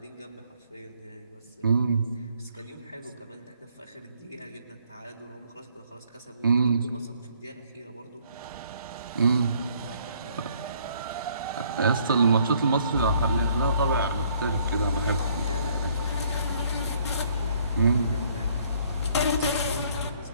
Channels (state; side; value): inverted; both; correlation -0.64